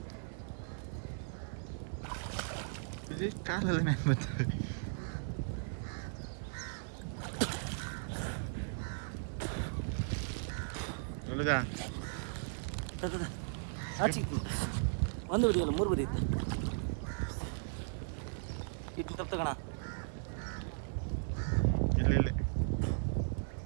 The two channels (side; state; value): left; silent; digital silence